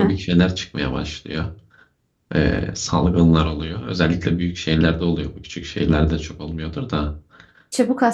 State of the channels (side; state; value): both; identical; correlation 1.00